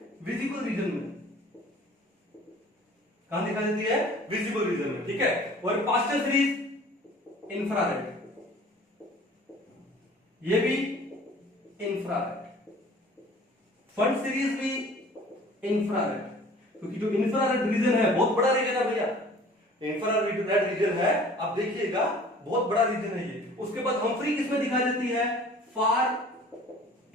विजिबल रीजन में। कहां दिखाई देती है, विजिबल रीजन में, ठीक है। और पास्टल सीरीज इंफ्रारेड, ये भी इंफ्रारेड। फंड सीरीज भी इंफ्रारेड, क्योंकि जो इंफ्रारेड रीजन है बहुत बड़ा रीजन है भैया, इंफ्रारेड रीजन है, आप देखिएगा बहुत बड़ा रीजन है ये। उसके बाद हम्फ्री किसमें दिखाई देती है, फार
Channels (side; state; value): both; normal; correlation 0.48